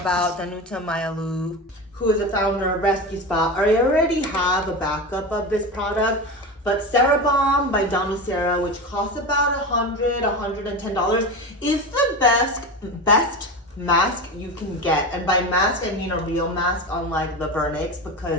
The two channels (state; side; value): normal; both; correlation 0.24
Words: Danucera, who is a founder of Rescue Spot. I already have a backup of this product, but Cerabalm by Danucera, which costs about $100, $110, is the best mask you can get. And by mask, I mean a real mask, unlike the Vernix,